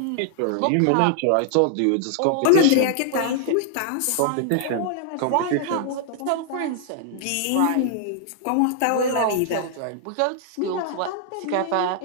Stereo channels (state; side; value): different; both; correlation -0.01